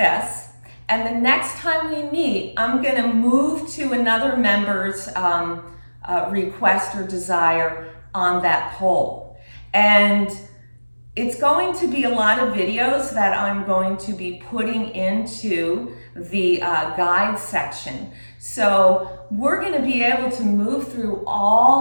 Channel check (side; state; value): both; inverted; correlation -1.00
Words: and the next time we meet, I'm gonna move to another member's request or desire on that poll. And it's going to be a lot of videos that I'm going to be putting into the guide section. So we're gonna be able to move through